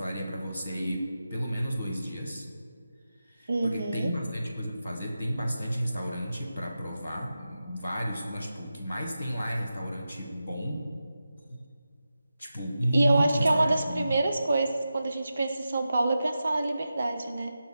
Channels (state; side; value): inverted; both; correlation -0.91